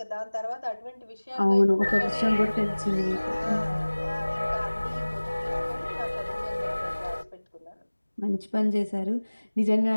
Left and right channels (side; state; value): both; inverted; correlation -1.00